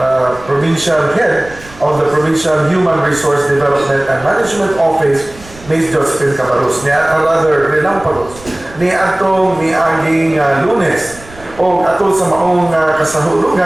provincial head of the Provincial Human Resource Development and Management Office, Ms. Josephine Cabarrus. Rather, relampagos. Ni atong miaging Lunes o atol sa maong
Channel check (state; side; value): noise; right; rumble, 20 dB below the sound